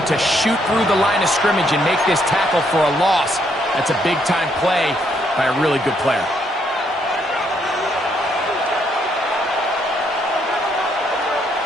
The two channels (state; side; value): normal; both; correlation 0.72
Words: to shoot through the line of scrimmage and make this tackle for a loss. That's a big-time play by a really good player.